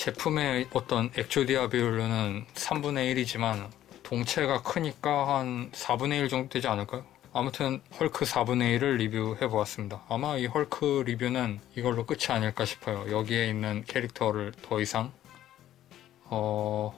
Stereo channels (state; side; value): quieter; right; 12.5 dB